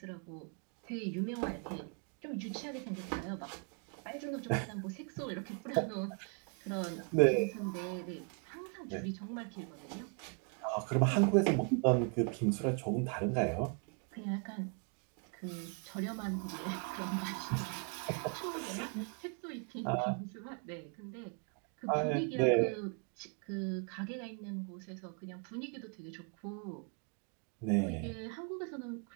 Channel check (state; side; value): quieter; left; 37.2 dB